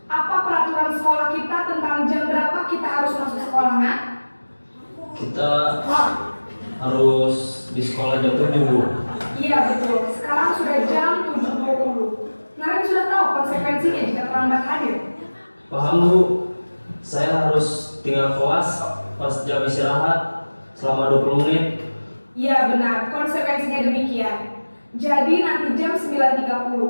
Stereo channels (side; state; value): both; inverted; correlation -1.00